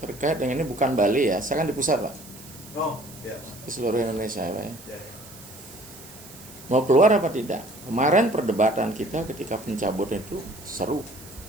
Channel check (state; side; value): noise; right; hiss, 18 dB below the sound